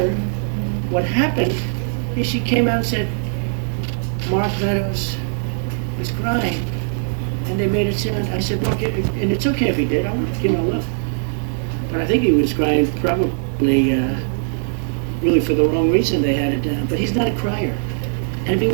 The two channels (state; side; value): silent; left; digital silence